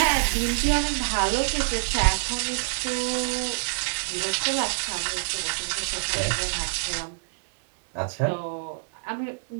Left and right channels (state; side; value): silent; left; digital silence